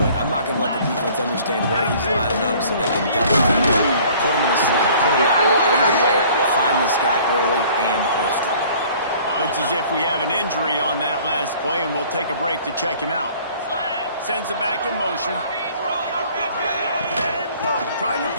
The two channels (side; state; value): both; inverted; correlation -0.52